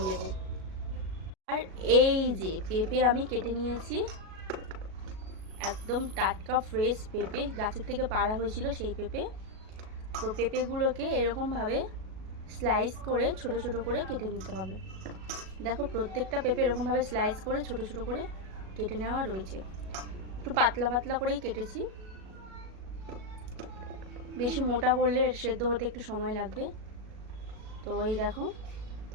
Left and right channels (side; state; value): left; late; 37 ms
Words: দেব। আর এই যে পেঁপে আমি কেটে নিয়েছি, একদম টাটকা ফ্রেশ পেঁপে, গাছের থেকে পাড়া হয়েছিল সেই পেঁপে। তো পেঁপেগুলোকে এরকমভাবে স্লাইস করে ছোট ছোট করে কেটে নিতে হবে। দেখো প্রত্যেকটা পেঁপে এরকমভাবে স্লাইস করে ছোট ছোট করে কেটে নেওয়া রয়েছে। একটু পাতলা করেই কেটেছি, বেশি মোটা করলে সেদ্ধ হতে একটু সময় লাগবে। তো এই দেখো,